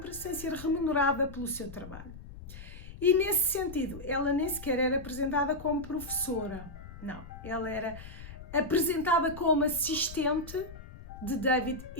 sem ser remunerada pelo seu trabalho. E nesse sentido, ela nem sequer era apresentada como professora. Não, ela era apresentada como assistente de David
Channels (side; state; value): left; noise; rumble, 14 dB below the sound